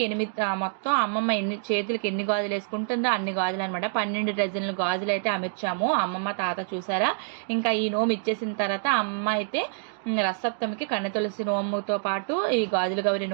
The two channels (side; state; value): left; silent; digital silence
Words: 8 మొత్తం అమ్మమ్మ చేతులకి ఎన్ని గాజులు వేసుకుంటుందో అన్ని గాజులు అనమాట. 12 డజన్లు గాజులు అయితే అమర్చాము. అమ్మమ్మ తాత చూసారా. ఇంకా ఈ నోము ఇచ్చేసిన తర్వాత అమ్మ అయితే రసప్తమికి కన్నె తులసి నోముతో పాటు ఈ గాజుల గౌరి